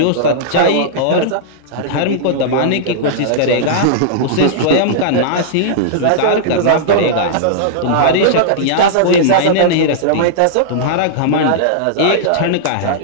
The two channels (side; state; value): both; different; correlation -0.02